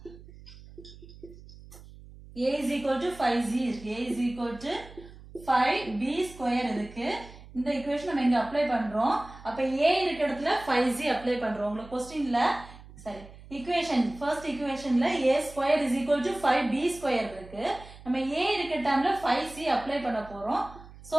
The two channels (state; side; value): noise; right; hum, 19 dB below the sound